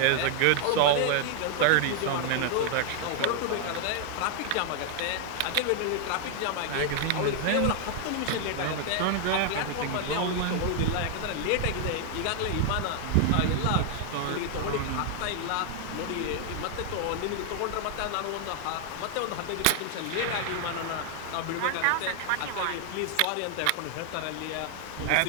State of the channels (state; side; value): different; both; correlation 0.00